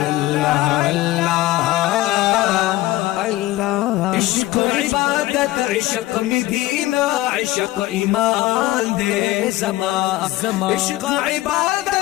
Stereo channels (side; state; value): right; quieter; 17.1 dB